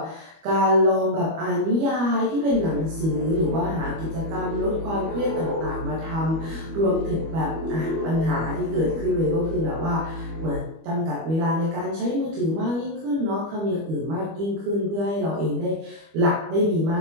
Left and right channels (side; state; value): left; late; 25 ms